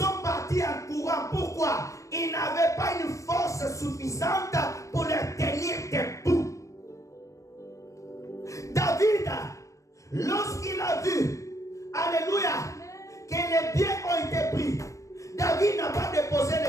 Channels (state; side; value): late; right; 0.15 ms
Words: partis en courant. Pourquoi? Ils n'avaient pas une force suffisante pour les tenir debout. David, lorsqu'il a vu, alléluia, que les biens ont été pris, David n'a pas déposé